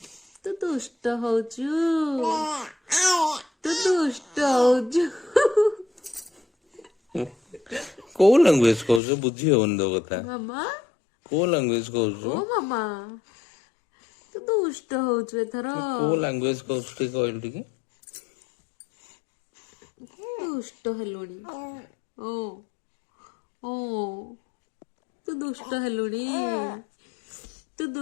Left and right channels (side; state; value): right; drops out; at 9.0 s